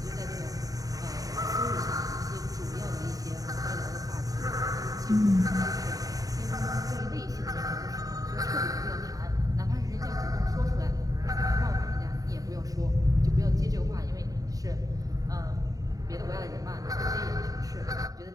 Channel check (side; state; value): left; late; 0.17 ms